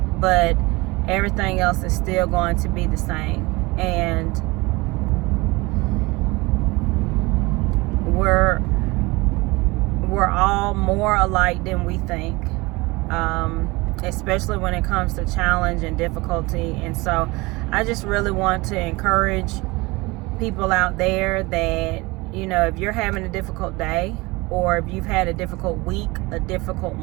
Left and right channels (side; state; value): left; quieter; 23.2 dB